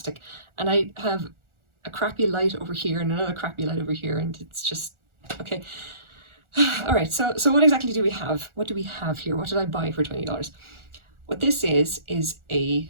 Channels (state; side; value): late; left; 1.4 ms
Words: And I have a crappy light over here and another crappy light over here, and it's just, okay. All right, so what exactly do we have? What do we have here? What did I buy for $20? What this is it's